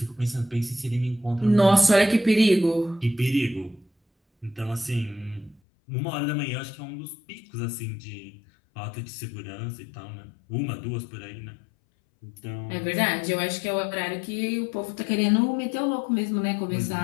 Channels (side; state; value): right; drops out; at 5.6 s